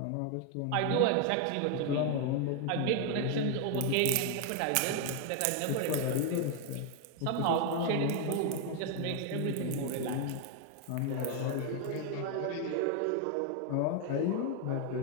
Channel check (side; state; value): both; different; correlation 0.01